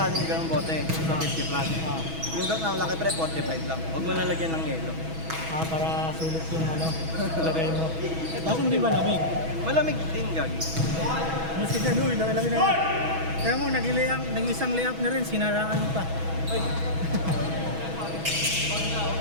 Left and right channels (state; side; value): late; left; 6.2 ms